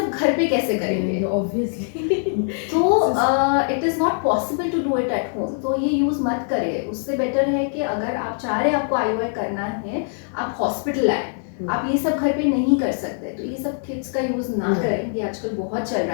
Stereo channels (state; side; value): silent; right; digital silence